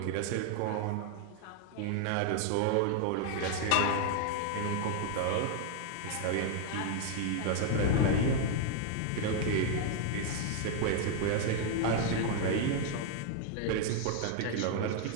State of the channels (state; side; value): different; both; correlation 0.00